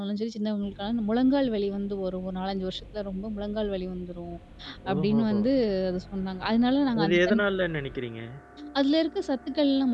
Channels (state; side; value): identical; both; correlation 1.00